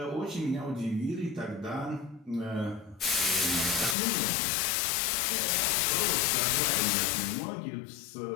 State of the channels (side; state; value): right; drops out; at 4.0 s